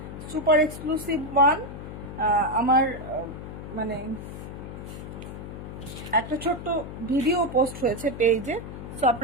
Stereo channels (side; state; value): left; noise; hum, 10 dB below the sound